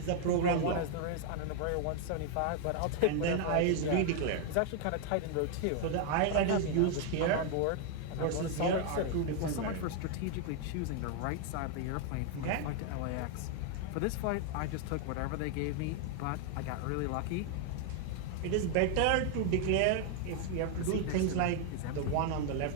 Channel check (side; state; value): both; different; correlation 0.00